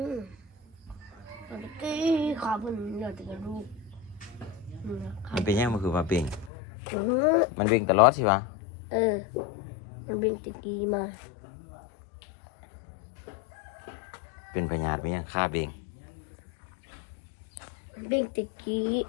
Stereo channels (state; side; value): drops out; right; at 6.5 s